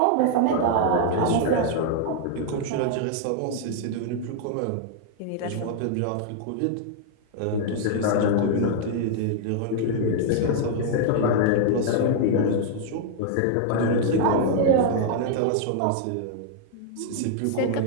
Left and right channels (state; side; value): different; both; correlation -0.01